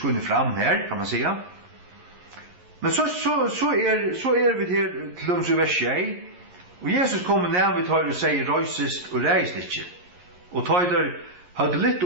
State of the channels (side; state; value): left; late; 11 ms